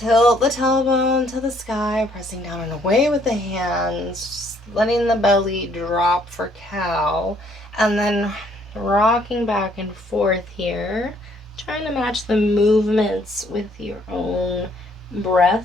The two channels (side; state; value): both; normal; correlation 0.65